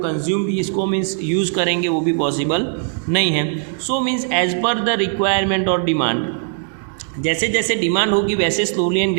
कंज्यूम इसको मीन्स यूज़ करेंगे वो भी पॉसिबल नहीं है. So means as per the requirement और डिमांड, जैसे जैसे डिमांड होगी वैसे slowly and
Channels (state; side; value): silent; left; digital silence